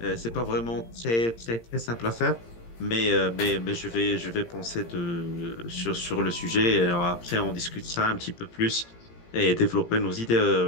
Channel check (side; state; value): right; late; 17 ms